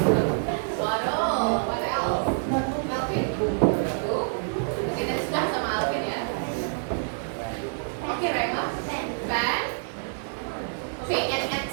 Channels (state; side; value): silent; left; digital silence